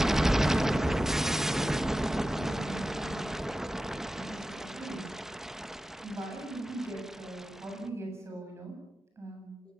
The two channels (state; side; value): normal; both; correlation 0.94